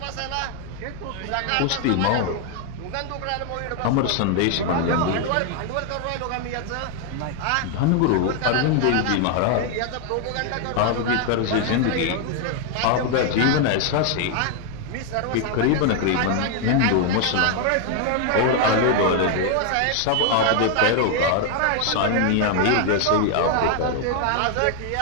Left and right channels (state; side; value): different; both; correlation 0.00